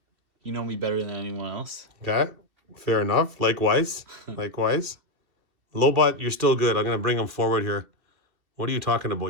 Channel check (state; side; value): late; left; 2.7 ms